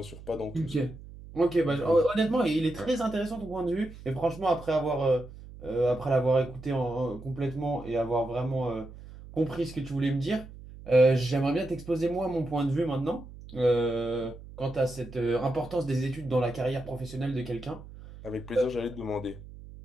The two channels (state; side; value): noise; right; hum, 16 dB below the sound